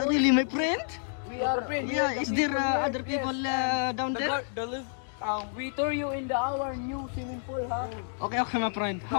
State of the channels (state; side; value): silent; right; digital silence